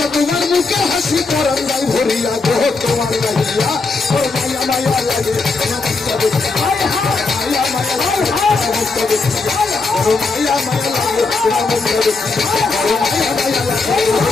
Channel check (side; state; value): right; quieter; 4.0 dB